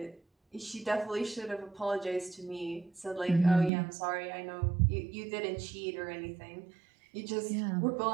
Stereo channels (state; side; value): drops out; left; at 3.7 s